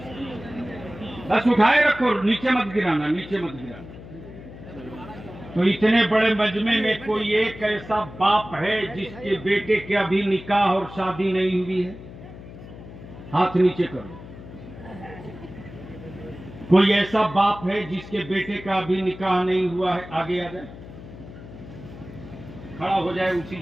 बस उठाए रखो, नीचे मत गिराना, नीचे मत गिराना। तो इतने बड़े मजमे में कोई एक ऐसा बाप है जिसके बेटे के अभी निकाह और शादी नहीं हुई है? हाथ नीचे करो। कोई ऐसा बाप है जिसके बेटे का अभी निकाह नहीं हुआ है? आगे आ जाए, खड़ा हो जाए उसी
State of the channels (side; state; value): left; noise; hum, 15 dB below the sound